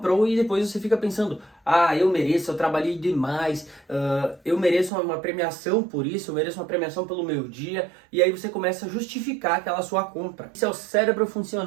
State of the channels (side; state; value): left; drops out; at 4.9 s